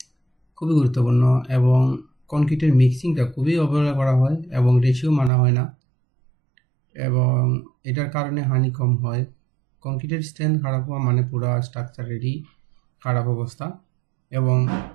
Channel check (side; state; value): left; drops out; at 5.3 s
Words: খুবই গুরুত্বপূর্ণ, এবং কনক্রিটের মিক্সিংটা খুবই অবহেলা করা হয় এবং রেশিও মানা হয় না, এবং এটার কারণে হানি কম হয়। কনক্রিটের স্ট্রেংথ খারাপ হওয়া মানে পুরো স্ট্রাকচারেরই খারাপ অবস্থা, এবং